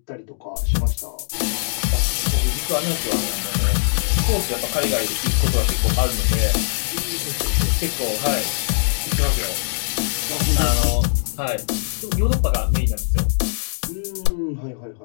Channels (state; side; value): silent; right; digital silence